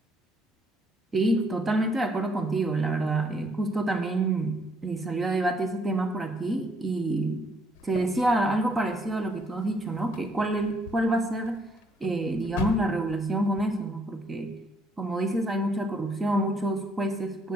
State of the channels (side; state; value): both; normal; correlation 0.68